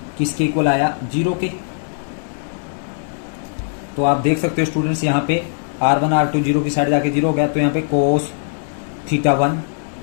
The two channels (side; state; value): right; silent; digital silence